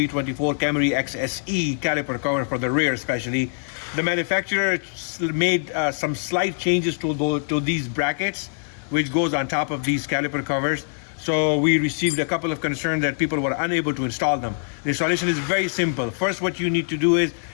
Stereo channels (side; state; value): right; silent; digital silence